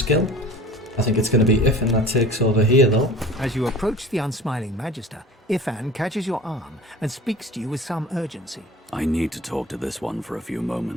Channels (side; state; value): both; normal; correlation 0.41